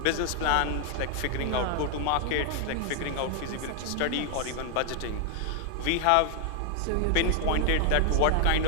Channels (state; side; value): different; both; correlation 0.00